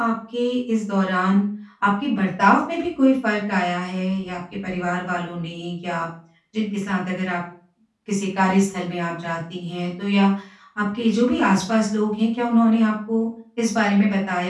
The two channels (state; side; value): identical; both; correlation 1.00